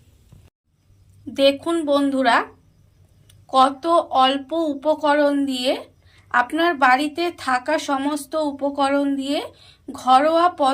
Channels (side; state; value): both; identical; correlation 1.00